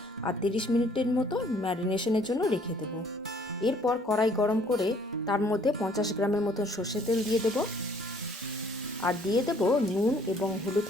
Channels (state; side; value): normal; both; correlation 0.60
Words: আর 30 মিনিটের মতো ম্যারিনেশনের জন্য রেখে দেবো। এরপর কড়াই গরম করে তার মধ্যে 50 গ্রামের মতো সর্ষের তেল দিয়ে দেবো। আর দিয়ে দেবো নুন এবং হলুদ